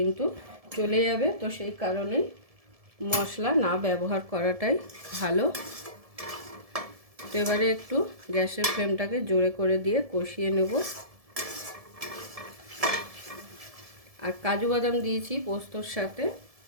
চলে যাবে, তো সেই কারণেই মশলা না ব্যবহার করাটাই ভালো। তো এবারে একটু গ্যাসের ফ্লেমটাকে জোরে করে দিয়ে কষিয়ে নেব। আর কাজু বাদাম দিয়েছি পোস্তর সাথে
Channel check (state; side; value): late; left; 1.7 ms